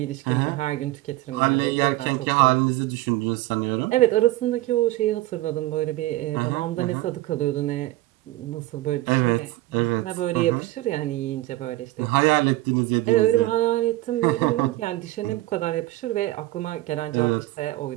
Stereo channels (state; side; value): quieter; left; 17.8 dB